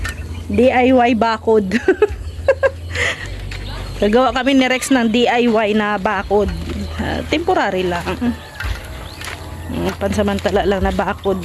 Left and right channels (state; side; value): identical; both; correlation 1.00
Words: DIY bakod. Gagawa kami ni Rex ng DIY na bakod. Temporary lang. Pansamantala lang na bakod